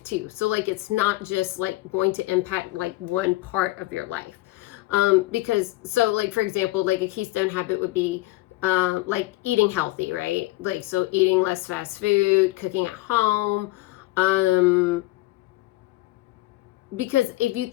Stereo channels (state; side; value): quieter; right; 19.2 dB